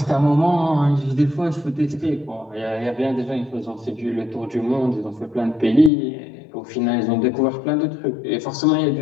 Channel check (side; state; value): right; drops out; at 5.9 s